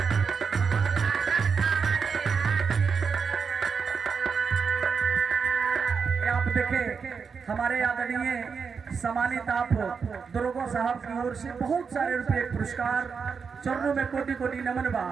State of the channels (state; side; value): quieter; left; 5.8 dB